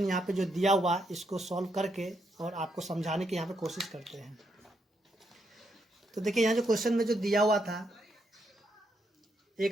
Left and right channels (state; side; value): normal; both; correlation 0.79